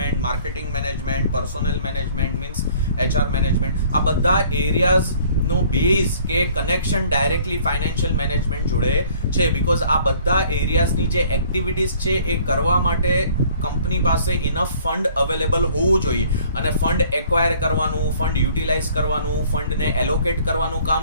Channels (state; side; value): inverted; both; correlation -0.56